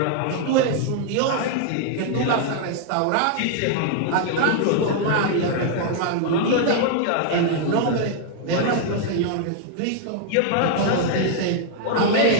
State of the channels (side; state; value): both; different; correlation 0.00